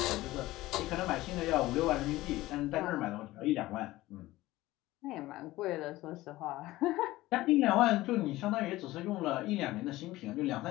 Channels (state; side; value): quieter; right; 17.6 dB